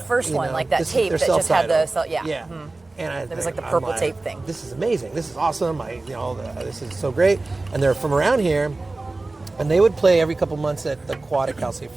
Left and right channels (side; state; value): left; quieter; 3.2 dB